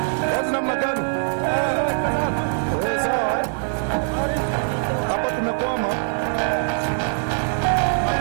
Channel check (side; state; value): left; silent; digital silence